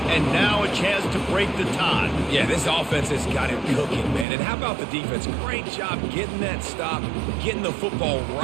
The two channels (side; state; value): left; drops out; at 4.2 s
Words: And now a chance to break the tie. Yeah, this offense has got it cooking, man. And how about the defense? Great job getting that stop, getting the football